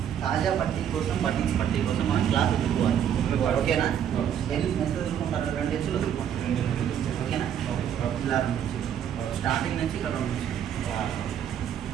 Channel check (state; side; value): quieter; left; 9.3 dB